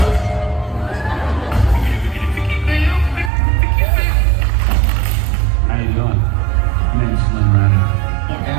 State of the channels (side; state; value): left; drops out; at 3.3 s